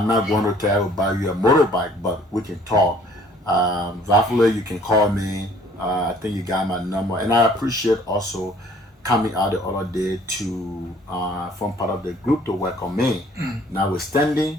not going to tell you buy you a motorbike, but we can talk. Hopefully you can call me. I think you got my number. And I appreciate also coming out the other day to form part of the group to work on me. Notwithstanding,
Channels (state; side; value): normal; both; correlation 0.57